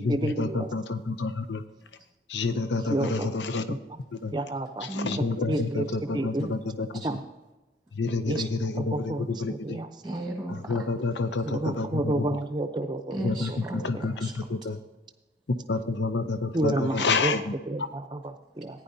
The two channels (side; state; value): both; normal; correlation 0.54